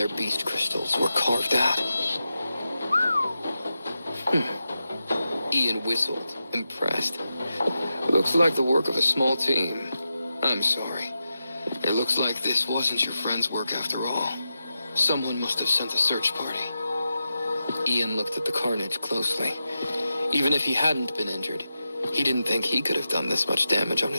beast crystals were carved out. Ian whistled, impressed. Looks like the work of a small team. I'm sorry. It looks like this wasn't your friend's work after all. Someone must have sent a search party. Ian looked at the carnage closely. Even if he hadn't been injured, he didn't think he could have done this much damage on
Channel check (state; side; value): inverted; both; correlation -0.90